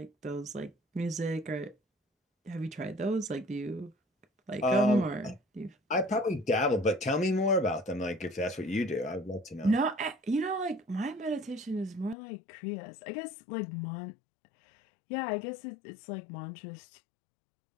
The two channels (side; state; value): right; drops out; at 12.2 s